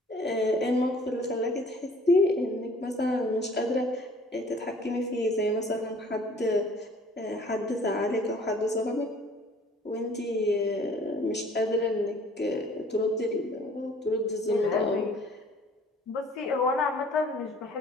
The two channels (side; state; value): both; normal; correlation 0.53